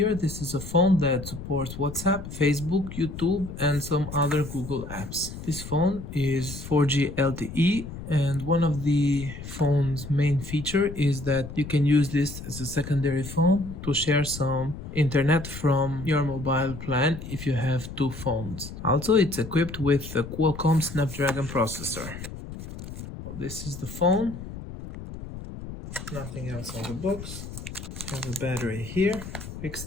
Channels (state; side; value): noise; left; rumble, 11 dB below the sound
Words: this is a phone that supports WhatsApp, Facebook, YouTube, and some other Google apps. This phone is 4G LTE, and one of the phone's main feature is that you can use this as a secondary phone to share some internet from your mobile plan if you have two phones. Also, it's equipped with a Qualcomm Snapdragon processor. This is the phone. Nothing else on the box. Have a battery here, quick